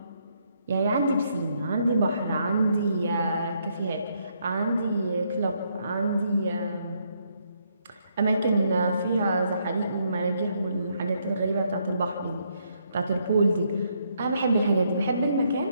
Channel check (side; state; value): both; inverted; correlation -0.74